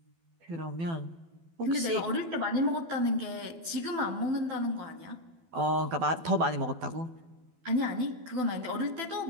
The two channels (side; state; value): left; late; 12 ms